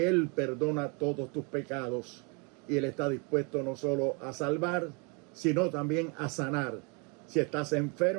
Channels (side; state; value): left; quieter; 32.8 dB